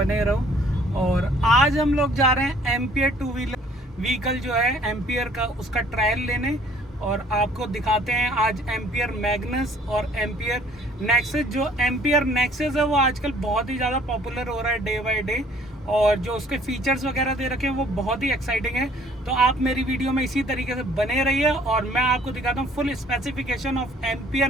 रहो। और आज हम लोग जा रहे हैं एम्पियर टू व्हीलर व्हीकल जो है एम्पियर का, उसका ट्रायल लेने और आपको दिखाते हैं आज एम्पियर मैग्नस और एम्पियर नेक्सस। जो एम्पियर नेक्सस है वो आजकल बहुत ही ज़्यादा पॉपुलर हो रहा है डे बाय डे, और जो उसके फीचर्स वगैरह दे रखे हैं वो बहुत ही एक्साइटिंग है। तो आप मेरी वीडियो में इसी तरीके से बने रहिए और मैं आपको दिखाता हूँ full specification of ampere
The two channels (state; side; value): normal; both; correlation 0.57